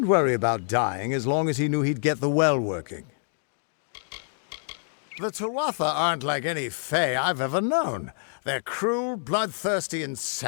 worry about dying as long as he knew he'd get the well working. The Tuatha aren't like any Fae I've ever known. They're cruel, bloodthirsty, and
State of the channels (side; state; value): right; silent; digital silence